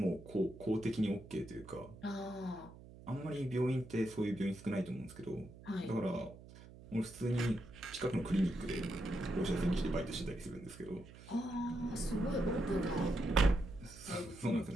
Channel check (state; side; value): noise; right; hum, 18 dB below the sound